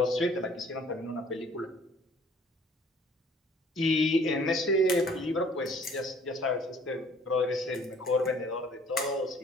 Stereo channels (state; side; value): normal; both; correlation 0.56